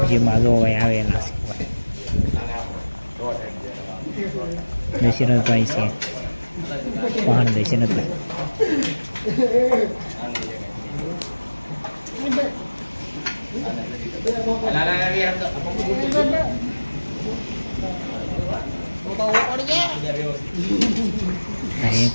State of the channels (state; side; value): inverted; both; correlation -1.00